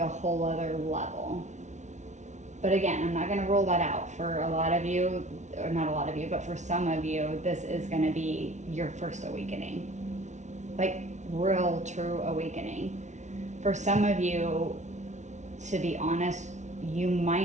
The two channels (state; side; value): late; left; 0.34 ms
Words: a whole other level. But again, I'm not going to rule that out. For a lot of you, or not a lot of you, but for some of you, this is going to be your first awakening. Like real, true awakening. For some of you, to be honest, you